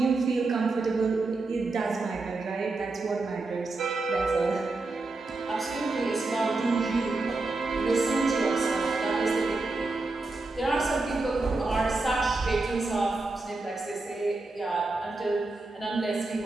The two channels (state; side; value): quieter; left; 3.4 dB